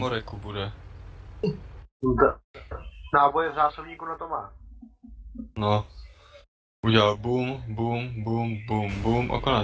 bude. Náboje v zásobníku na to má. No. Udělal boom, boom, boom, boom, boom a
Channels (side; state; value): both; identical; correlation 1.00